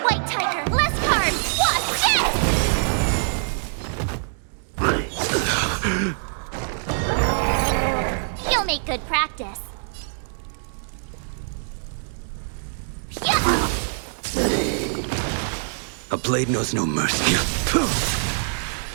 White Tiger, less cards, watch this! You'll make good practice. A blade knows no mercy.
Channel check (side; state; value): left; silent; digital silence